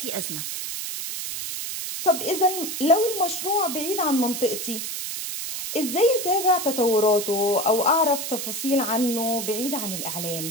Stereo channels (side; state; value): right; noise; hiss, 5 dB below the sound